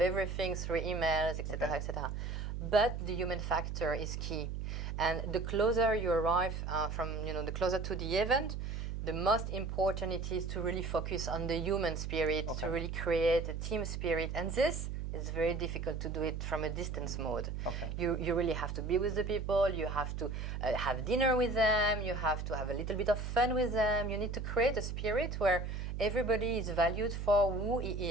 everything through emails, etc., etc. But the human factor is key, and the closer you arrive the closer to the event, the most important it is to really focus on the human spirit, to really create a team spirit, and this is very difficult to do it from a distance mode. Okay. You really have to be with the people, you have to have dinner with them, you have to have a little bit of fun with them, you need to create a spirit where everybody is valued for who he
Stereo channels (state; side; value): noise; right; hum, 4 dB below the sound